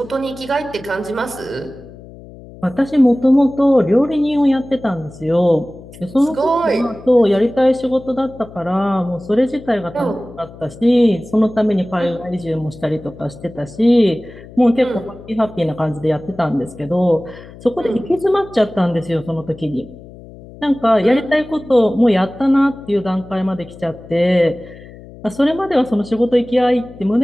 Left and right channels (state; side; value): noise; left; hum, 18 dB below the sound